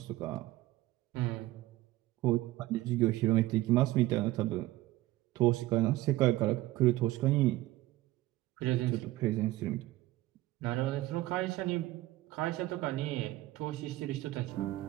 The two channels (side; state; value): left; quieter; 17.2 dB